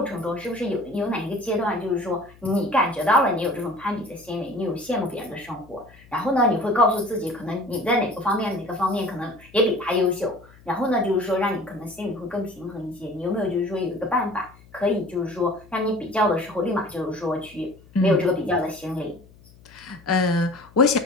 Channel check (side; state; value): left; noise; hum, 25 dB below the sound